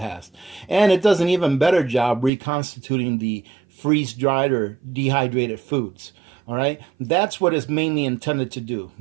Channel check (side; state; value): left; drops out; at 2.3 s